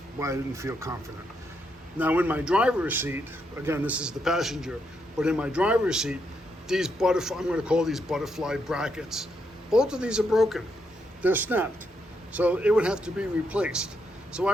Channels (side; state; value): both; normal; correlation 0.79